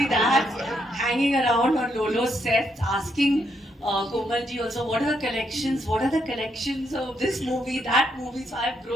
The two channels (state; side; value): normal; both; correlation 0.77